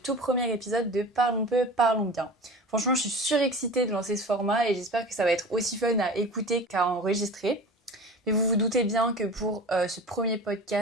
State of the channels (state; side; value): normal; both; correlation 0.36